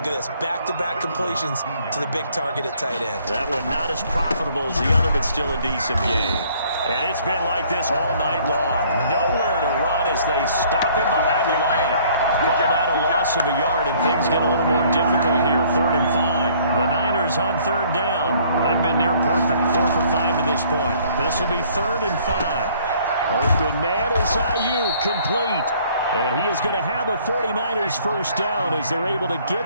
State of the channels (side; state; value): both; inverted; correlation -0.59